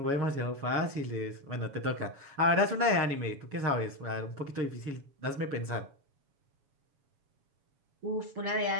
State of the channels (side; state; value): left; late; 7.1 ms